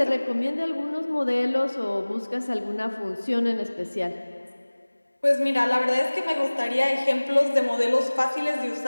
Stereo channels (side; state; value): both; inverted; correlation -1.00